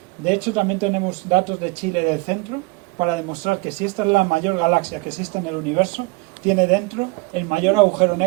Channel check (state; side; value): quieter; left; 25.2 dB